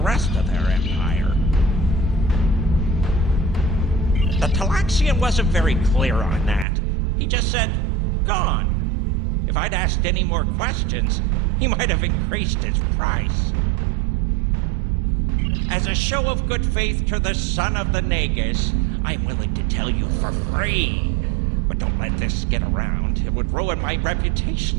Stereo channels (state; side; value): drops out; left; at 6.7 s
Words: of their empire. The Talaxian wasn't very clear on that. He just said, gone. If I'd asked any more questions, he might have increased his price. As a show of good faith to the son of the Nagus, I'm willing to tell you for free. But don't let this get around. It would ruin my